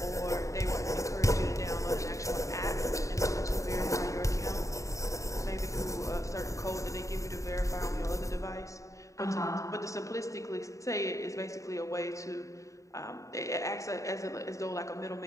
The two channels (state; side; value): late; right; 0.16 ms